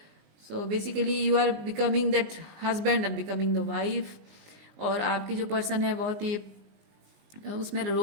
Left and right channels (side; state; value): left; late; 19 ms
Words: So basically you are becoming that husband and becoming the wife. और आपके जो पर्सन है बहुत ही उसमें